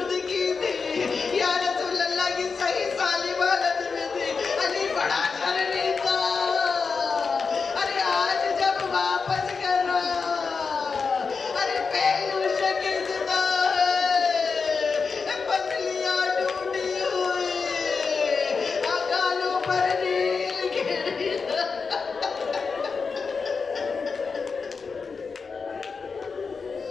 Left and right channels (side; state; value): right; quieter; 5.0 dB